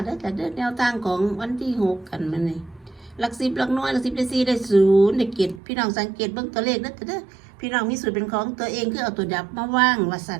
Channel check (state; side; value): drops out; left; at 5.6 s